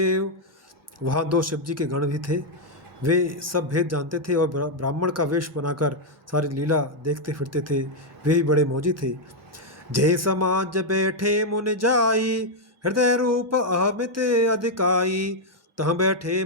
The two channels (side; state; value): both; normal; correlation -0.01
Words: वहाँ दो शिव जी के गण भी थे। वे सब भेद जानते थे और ब्राह्मण का वेश बनाकर सारी लीला देखते फिरते थे। वे ही बड़े मौजी थे। जय समाज बैठे मुनि जाई, हृदय रूप अहमित अधिकाई। तह बैठे